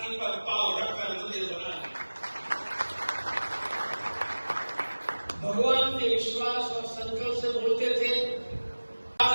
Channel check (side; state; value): both; inverted; correlation -1.00